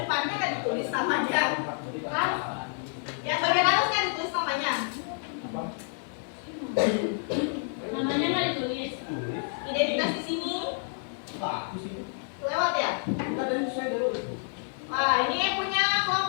kan ditulis namanya. Yang bagian atas kan ditulis namanya. Namanya nggak ditulis. Identitas di sini. Lewat ya? Nah, ini yang punya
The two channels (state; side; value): silent; right; 59 dB below the other